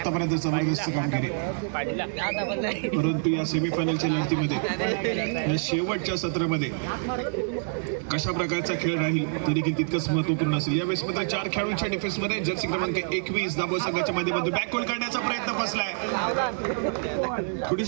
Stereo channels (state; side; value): silent; left; digital silence